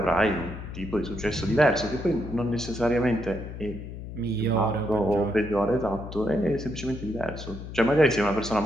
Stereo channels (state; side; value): noise; left; hum, 10 dB below the sound